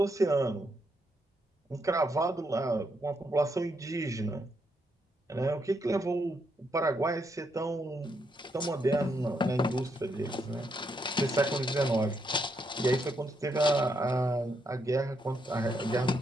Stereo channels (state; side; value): normal; both; correlation 0.78